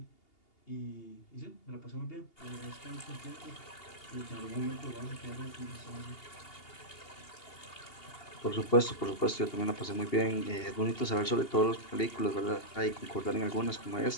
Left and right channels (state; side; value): late; right; 2.8 ms